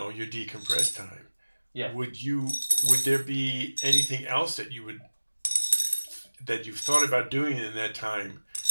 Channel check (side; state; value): both; inverted; correlation -1.00